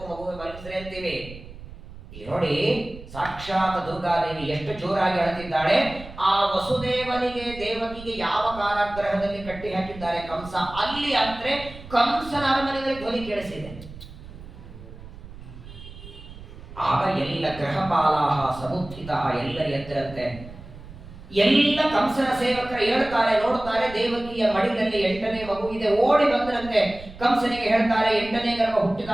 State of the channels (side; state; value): right; noise; rumble, 16 dB below the sound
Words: ಮಗುವೆ ಮಲಗಿಸ್ರಿ ಅಂತೀವಿ. ಈ ನೋಡಿ, ಸಾಕ್ಷಾತ್ ದುರ್ಗಾದೇವಿ ಎಷ್ಟು ಜೋರಾಗಿ ಅಳತಿದ್ದಾಳೆ. ಆ ವಸುದೇವನಿಗೆ ದೇವಕಿಗೆ ಯಾವ ಕಾರಾಗೃಹದಲ್ಲಿ ಕಟ್ಟಿ ಹಾಕಿದ್ದಾರೆ ಕಂಸ, ಅಲ್ಲಿ ಅಂದ್ರೆ ಕಂಸನ ಅರಮನೆಯಲ್ಲಿ ಧ್ವನಿ ಕೇಳಿಸಿದೆ. ಆಗ ಎಲ್ಲ ಗ್ರಹಪಾಲಾಹ ಸಮುತ್ಥಿತ, ಎಲ್ಲರ ಎದ್ದರಂತೆ. ಎಲ್ಲ ಕಂಸನ ಸೇವಕರು ಹೇಳ್ತಾರೆ, ನೋಡ್ತಾರೆ, ದೇವಕಿಯ ಮಡಿಲಲ್ಲಿ 8ನೇ ಮಗು ಇದೆ. ಓಡಿ ಬಂದ್ರಂತೆ ಕಂಸನಿಗೆ ಹೇಳ್ತಾರೆ, 8ನೇ ಗರ್ಭ ಹುಟ್ಟಿದ